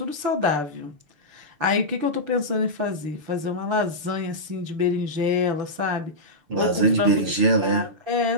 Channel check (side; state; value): left; late; 6.8 ms